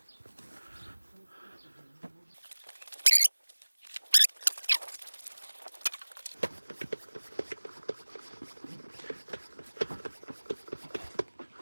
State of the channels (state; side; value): inverted; both; correlation -1.00